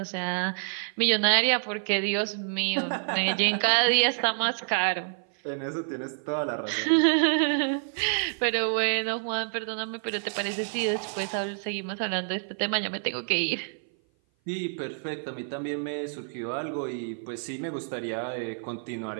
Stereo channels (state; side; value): silent; left; 56 dB below the other